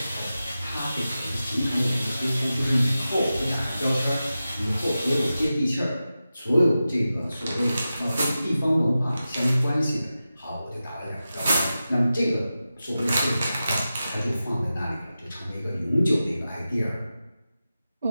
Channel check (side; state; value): both; inverted; correlation -0.93